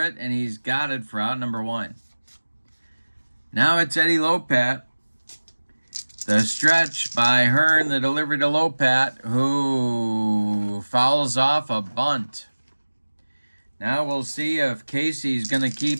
and he's got it for out number 1. Now it's Eddie Lopat. The stretch by Hearn, the delivery to Lopat, who fouls off a bunt. Now we'll see if Casey's going to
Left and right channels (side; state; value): both; inverted; correlation -1.00